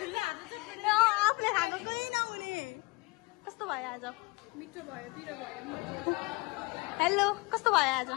आफूले खाएको केही नहुने कस्तो भयो आज मिठो भयो पिरो भयो हेलो कस्तो भयो आज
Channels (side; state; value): right; quieter; 26.2 dB